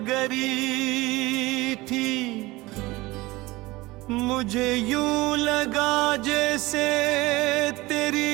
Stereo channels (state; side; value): quieter; left; 20.6 dB